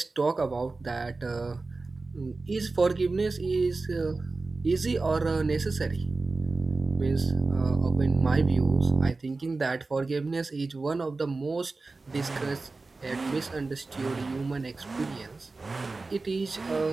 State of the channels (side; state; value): left; quieter; 3.6 dB